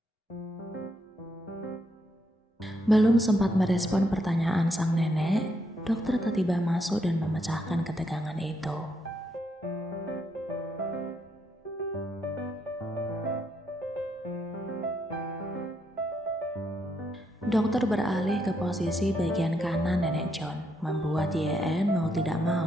Belum sempat merespon pertanyaan sang nenek, dokter tiba-tiba masuk dan memecahkan ketegangan itu. Dokter beralih ke posisi bagian kanan nenek John, membuat YN mau tidak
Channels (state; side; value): normal; both; correlation 0.77